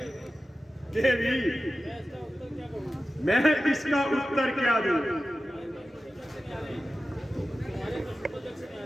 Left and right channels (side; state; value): both; normal; correlation 0.94